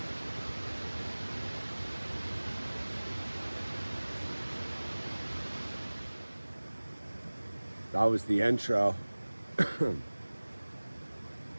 That was the intro. I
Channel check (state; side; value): inverted; both; correlation -1.00